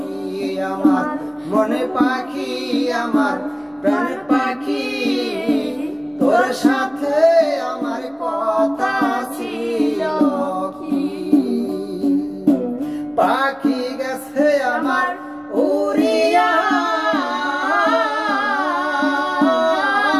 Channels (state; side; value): identical; both; correlation 1.00